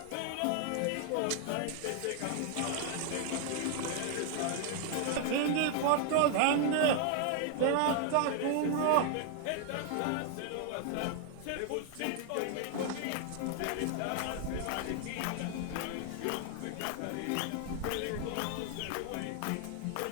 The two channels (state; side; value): different; both; correlation 0.00